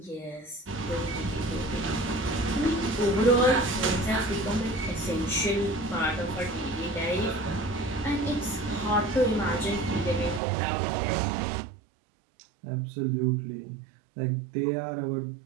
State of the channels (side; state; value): left; drops out; at 10.4 s